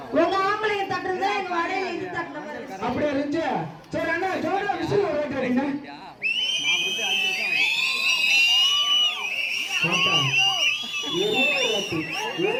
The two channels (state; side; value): identical; both; correlation 1.00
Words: உங்க ஆம்பளைங்க தட்டுறது எங்க வடையில இது தட்டுற மாதிரி. அப்படியே இருந்துச்சு. சரி அண்ணா ஜோரா விசில் ஓட்டுறீங்க பாப்பா.